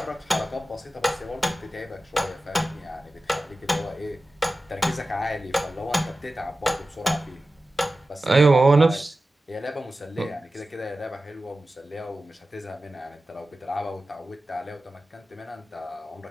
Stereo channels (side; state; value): both; normal; correlation 0.95